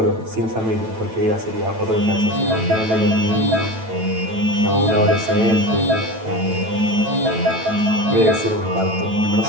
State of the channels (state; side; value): late; left; 9.1 ms